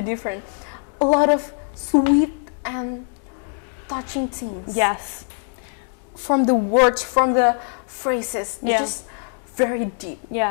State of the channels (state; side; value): silent; right; 64 dB below the other